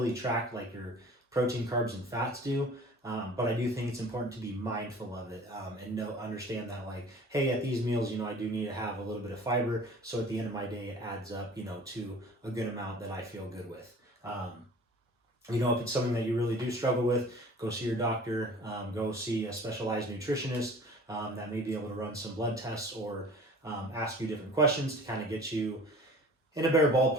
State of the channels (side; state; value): both; normal; correlation 0.44